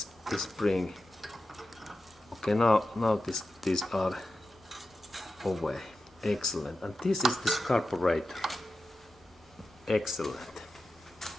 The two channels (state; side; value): normal; both; correlation 0.92